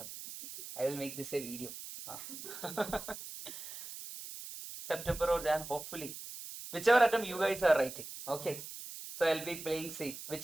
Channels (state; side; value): noise; right; hiss, 11 dB below the sound